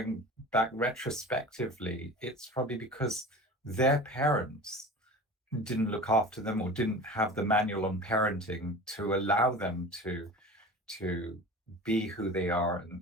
back retrospectively, it's probably because their parents didn't look after them or didn't have the manual on parenting to allow them to be who they are, and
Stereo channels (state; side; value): normal; both; correlation 0.36